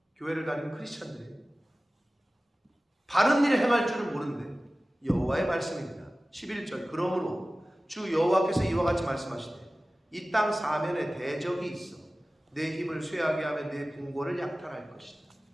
교회를 다니는 크리스찬들이에요. 바른 일을 행할 줄을 모르는데 여호와의 말씀입니다. 11절 그러므로 주 여호와께서 이와 같이 말씀하시되 이 땅 사면에 대적이 있어 내 힘을 쇠하게 하며 내 궁궐을 약탈할 것이다.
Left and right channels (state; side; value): normal; both; correlation 0.97